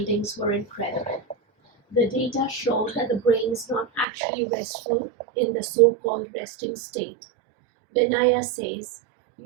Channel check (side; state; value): left; drops out; at 4.0 s